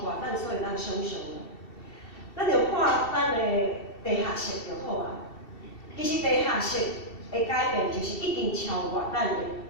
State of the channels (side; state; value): right; late; 2.7 ms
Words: 咱所有咱想象的。咱着看咱的地下室就好啊。其实地下室的改变，就是已经超过